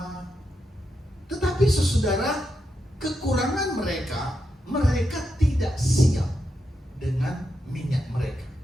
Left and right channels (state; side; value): normal; both; correlation 0.85